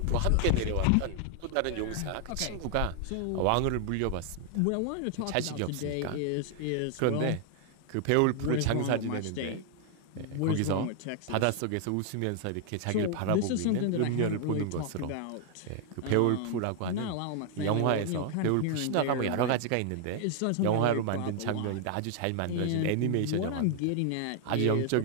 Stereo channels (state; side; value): different; both; correlation 0.00